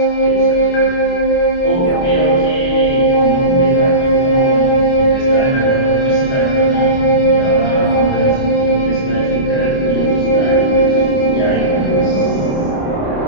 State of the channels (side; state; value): right; late; 29 ms